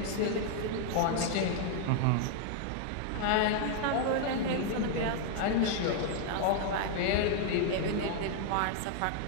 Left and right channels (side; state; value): both; different; correlation 0.00